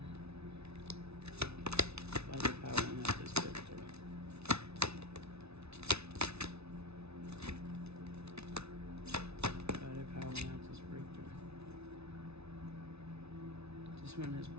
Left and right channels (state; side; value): late; left; 0.80 ms